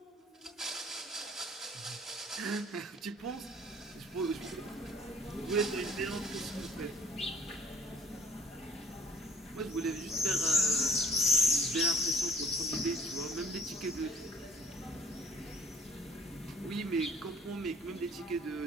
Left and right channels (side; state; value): both; normal; correlation 0.53